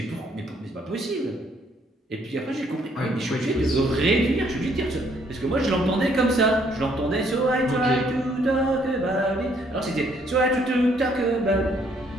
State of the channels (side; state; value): both; normal; correlation 0.67